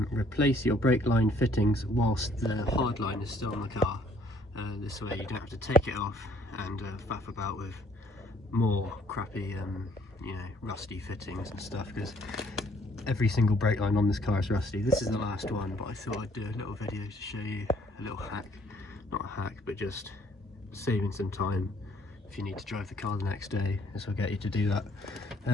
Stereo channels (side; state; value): both; normal; correlation 0.62